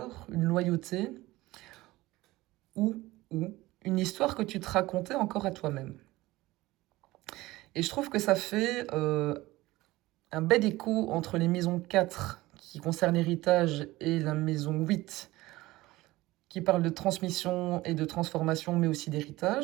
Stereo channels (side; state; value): left; quieter; 18.7 dB